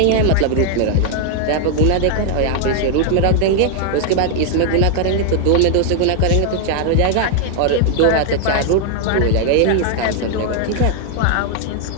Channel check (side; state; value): both; different; correlation 0.00